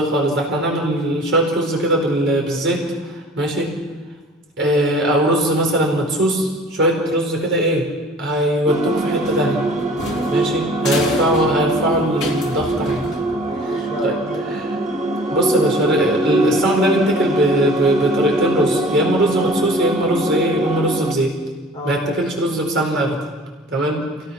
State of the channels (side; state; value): both; normal; correlation 0.46